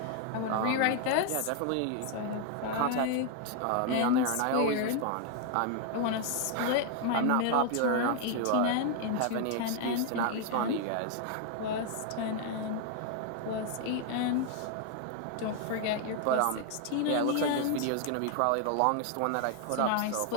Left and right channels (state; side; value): different; both; correlation 0.00